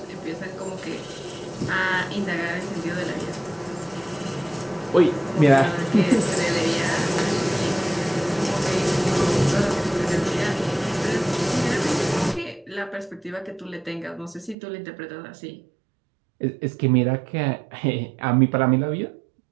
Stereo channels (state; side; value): drops out; left; at 14.6 s